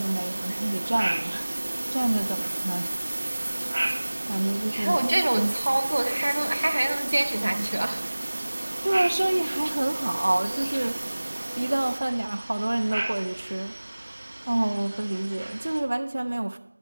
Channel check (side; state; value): both; inverted; correlation -1.00